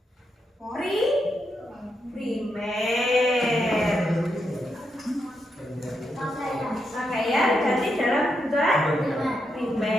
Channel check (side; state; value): both; normal; correlation 0.83